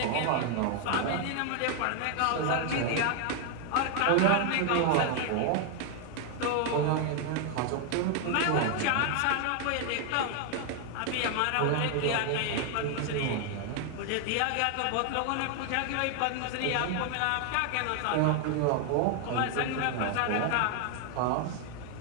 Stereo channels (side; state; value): both; different; correlation 0.00